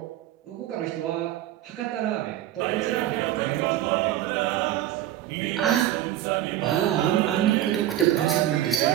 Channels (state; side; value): quieter; left; 12.8 dB